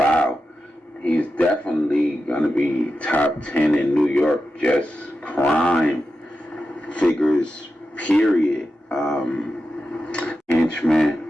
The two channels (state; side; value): normal; both; correlation 0.90